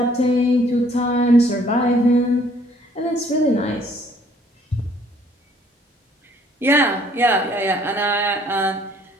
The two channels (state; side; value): normal; both; correlation 0.61